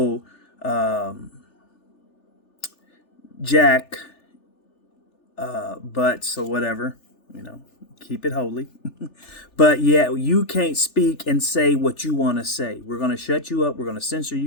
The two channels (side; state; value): right; late; 3.4 ms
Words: jack butts or whatever, keep it holy. But yeah, you can't speak and say what you want to say. We're going to shut you up. We're going to censor